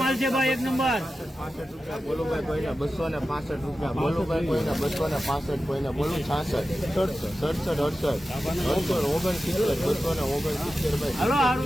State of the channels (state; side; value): normal; both; correlation 0.93